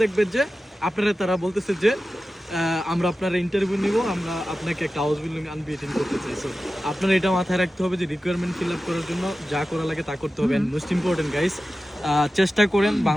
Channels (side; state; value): both; normal; correlation 0.94